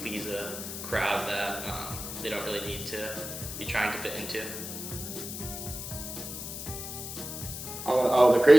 a crowd that they don't really need to be trying to fit into. The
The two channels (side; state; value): left; noise; hiss, 8 dB below the sound